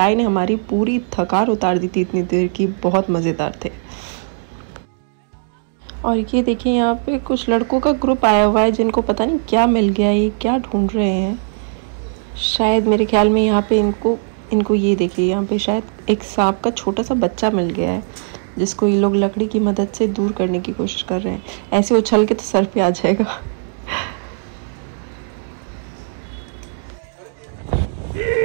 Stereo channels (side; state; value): left; silent; digital silence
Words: ने हमारी पूरी थकान उतार दी थी इतनी देर की। बहुत मज़ेदार थे। और ये देखिए यहाँ पे कुछ लड़कों का ग्रुप आया हुआ है जिनको पता नहीं क्या मिल गया, ये क्या ढूंढ रहे हैं। शायद मेरे ख्याल में यहाँ पे इनको ये देखिए, यहाँ पे शायद एक सांप का छोटा सा बच्चा मिल गया है जिसको ये लोग लकड़ी की मदद से दूर करने की कोशिश कर रहे हैं। ऐसे उछल के तो सर पे आ जाएगा।